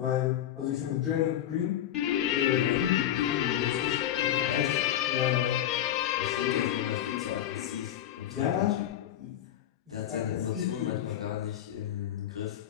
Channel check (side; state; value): right; quieter; 11.5 dB